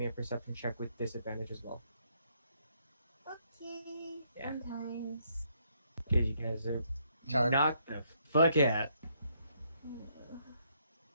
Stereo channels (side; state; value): both; inverted; correlation -0.73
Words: a perception check with disadvantage as well. Okay. Yeah. Sometimes. Because you guys are Charmed. knocked the fuck out.